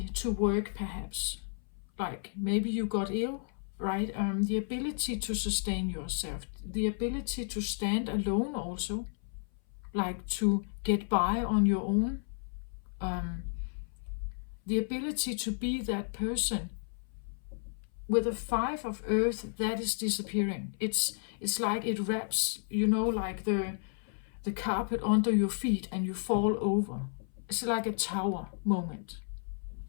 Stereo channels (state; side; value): silent; right; 56 dB below the other